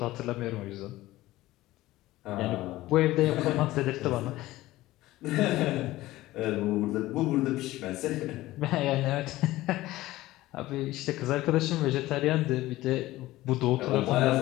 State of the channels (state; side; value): quieter; right; 17.0 dB